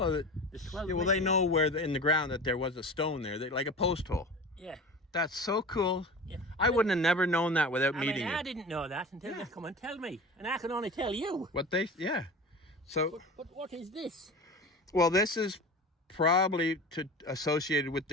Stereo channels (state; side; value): normal; both; correlation 0.34